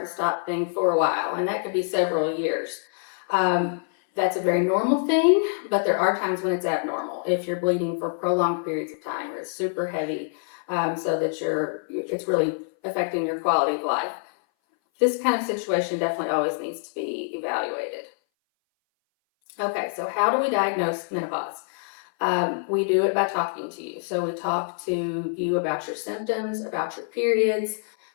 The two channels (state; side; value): silent; right; 59 dB below the other